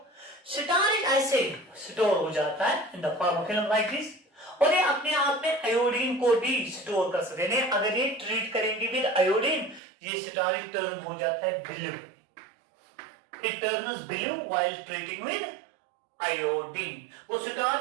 स्टार्च ऐसे स्टोर हो जाता है in the form of film like this, और ये अपने आप में आयोडीन को भी स्टोर कर सकते हैं। अगर ये ट्रीट करेंगे विद आयोडीन, ये स्टार्च टर्न हो जाता है blue, It turns blue while treating with iodine. वो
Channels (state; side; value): drops out; left; at 9.8 s